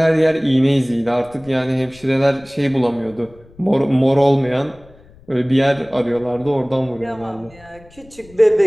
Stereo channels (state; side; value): noise; left; rumble, 25 dB below the sound